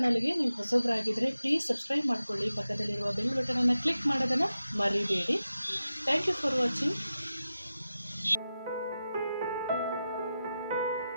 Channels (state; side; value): inverted; both; correlation -0.92